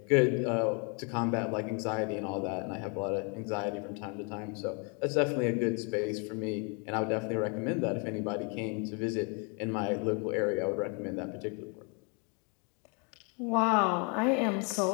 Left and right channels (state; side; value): quieter; right; 35.6 dB